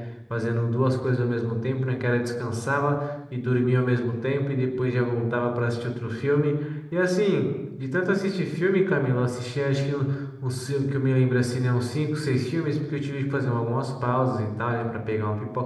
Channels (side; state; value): both; identical; correlation 1.00